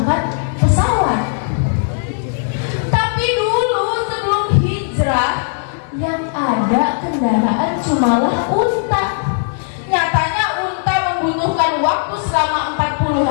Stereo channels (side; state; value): right; silent; digital silence